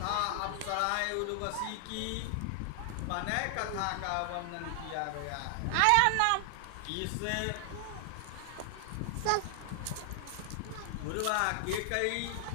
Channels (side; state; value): both; different; correlation 0.00